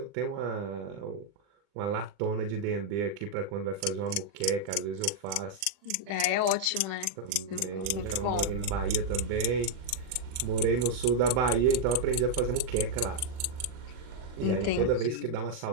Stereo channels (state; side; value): late; left; 40 ms